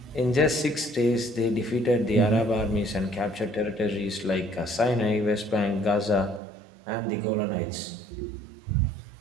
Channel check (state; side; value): drops out; left; at 6.4 s